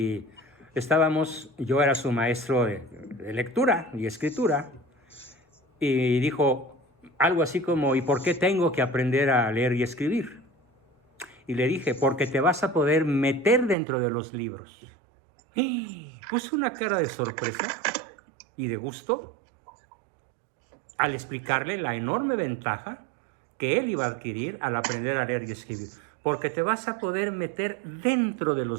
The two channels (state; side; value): drops out; left; at 13.8 s